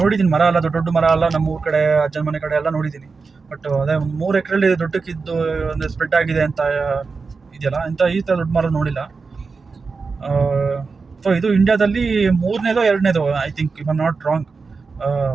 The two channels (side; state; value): left; quieter; 4.6 dB